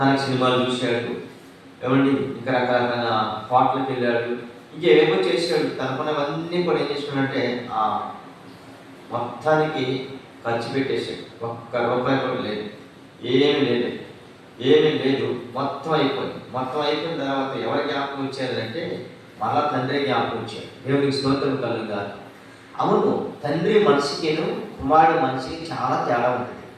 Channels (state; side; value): identical; both; correlation 1.00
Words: సినిమాలు చూశాడు, ఏమండి ఇంకా రకరకాల పాటలకు వెళ్ళాడు, ఇంకేమో చేశాడు. తనకున్నవన్నీ కూడా ఏం చేశాడంటే ఆ మొత్తానికి ఖర్చు పెట్టేశాడు. ఒక్క రూపాయి కూడా లేదు, ఏమీ లేదు. మొత్తం అయిపోయిన తర్వాత ఎవరి జ్ఞాపకం వచ్చారంటే మళ్ళా తండ్రి జ్ఞాపకం వచ్చాడు. దేవునికి స్తోత్రం కలుగుగాక. అవును, తండ్రి మనిషికిను కుమారుడు మనిషికి చాలా తేడా ఉంటుంది.